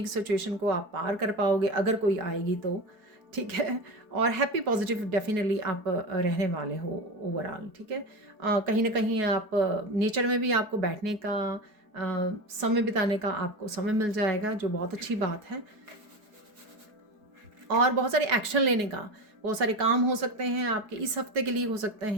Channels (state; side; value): late; left; 4.8 ms